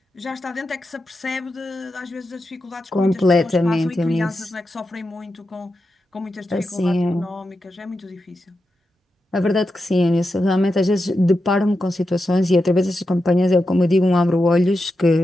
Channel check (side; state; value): both; normal; correlation 0.88